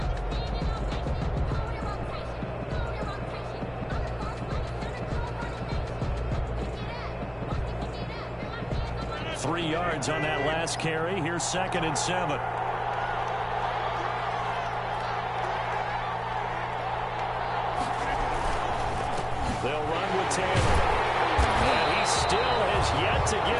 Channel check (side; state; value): both; identical; correlation 1.00